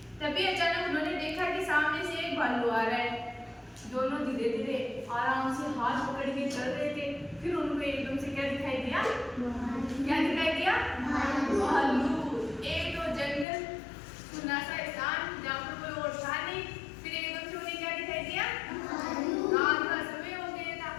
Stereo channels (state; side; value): drops out; right; at 13.5 s